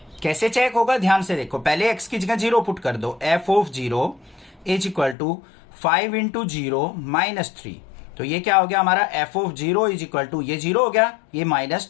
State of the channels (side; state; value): right; drops out; at 5.2 s